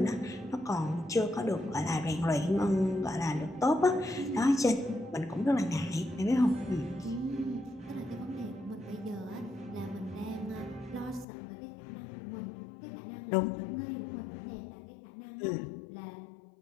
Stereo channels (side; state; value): right; drops out; at 11.2 s